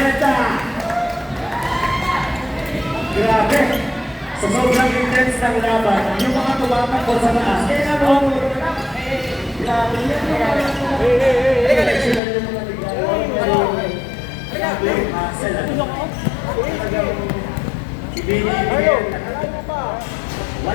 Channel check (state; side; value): drops out; right; at 12.2 s